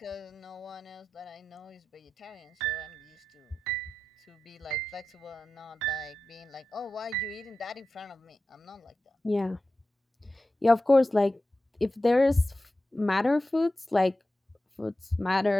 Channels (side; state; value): both; normal; correlation 0.94